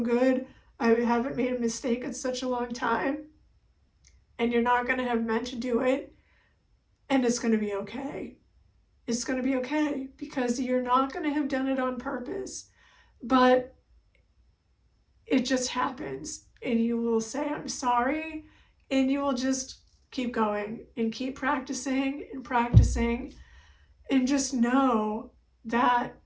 I haven't made a mistake in such a long time. And you're not going to have meant to do it. And it's going to be okay. It's going to be okay because you're not going to have done it on purpose. But it just happens, and you will say, I'm sorry, and you will just keep going and keep practicing and practicing, and just know that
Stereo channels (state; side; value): identical; both; correlation 1.00